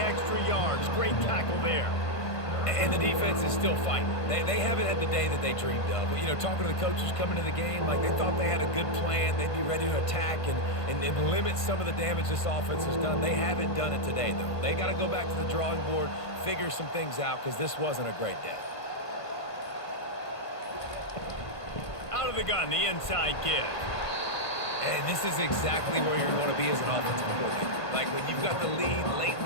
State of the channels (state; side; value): late; right; 1.5 ms